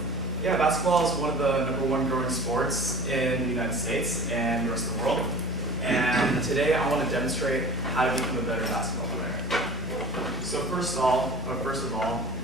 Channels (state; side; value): normal; both; correlation 0.38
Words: Yeah, basketball is one of the #1 growing sports in the United States and the rest of the world. And today I want to demonstrate how to become a better basketball player. So first of all,